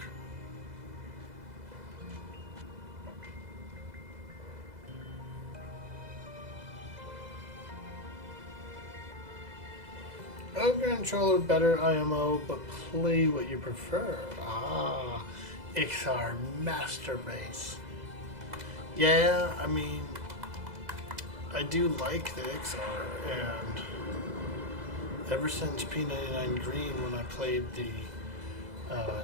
Ogre and Troll are better IMO, but play what you prefer. Ah, Ixar Master Race. Yeah, I mean, I do like the Ixar, and ever since P99 Green, when I played the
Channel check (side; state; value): left; late; 2.0 ms